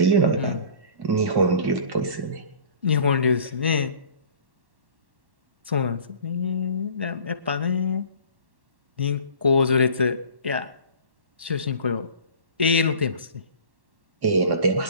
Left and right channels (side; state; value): left; late; 1.1 ms